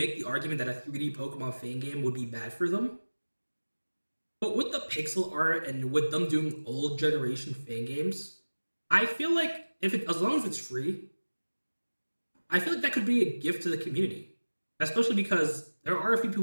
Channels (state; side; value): inverted; both; correlation -1.00